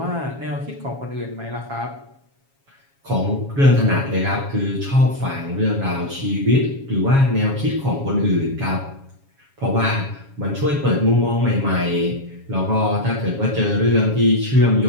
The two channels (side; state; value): left; late; 7.3 ms